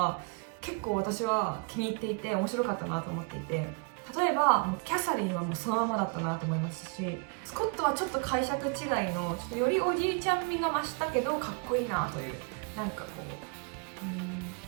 結構私は気に入っていて面白かったなと思っていて、例えばキャサリンはもうそのままだったなと思いますし、スコットはちょっと解釈違いのちょっとよりおじいちゃん味が増したけどかっこいいなという、なんか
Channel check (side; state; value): left; quieter; 33.4 dB